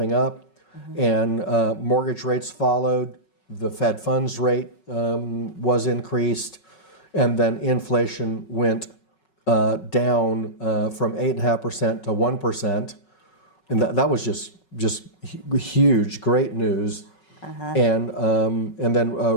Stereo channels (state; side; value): late; right; 5.4 ms